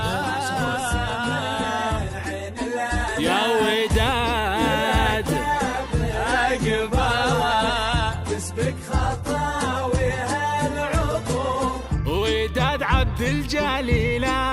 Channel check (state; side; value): identical; both; correlation 1.00